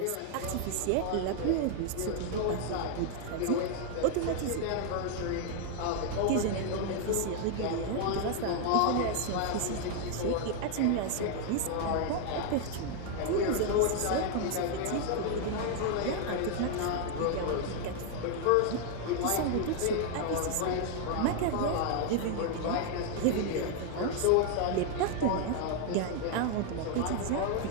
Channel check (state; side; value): different; both; correlation 0.00